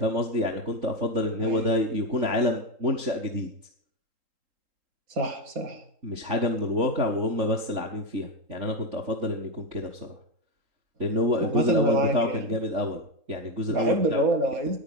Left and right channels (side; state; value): left; late; 3.8 ms